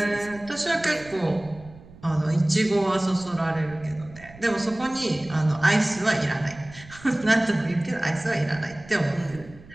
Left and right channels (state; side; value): noise; right; rumble, 20 dB below the sound